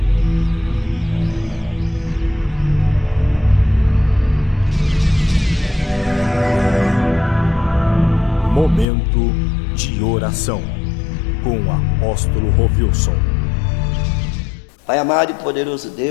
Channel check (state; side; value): drops out; right; at 8.8 s